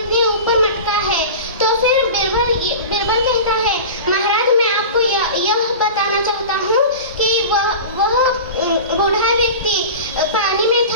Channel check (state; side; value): inverted; both; correlation -0.32